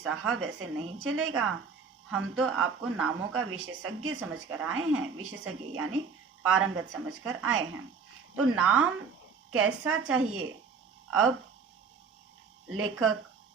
ऐसे नहीं चलेगा, हम तो आपको नामों का विशेषज्ञ समझकर आए हैं। विशेषज्ञ यानी पारंगत समझकर आए हैं, तो नाम कैसा चाहिए। अब लेखक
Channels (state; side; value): quieter; left; 5.5 dB